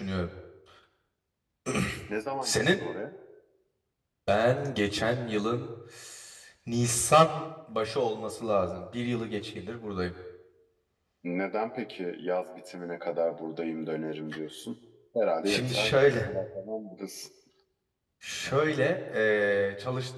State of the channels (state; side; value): identical; both; correlation 1.00